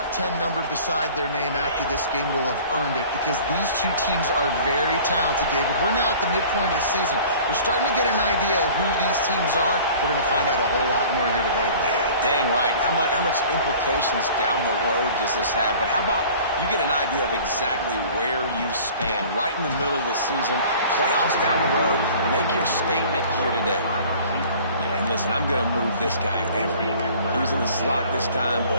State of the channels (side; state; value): both; inverted; correlation -0.46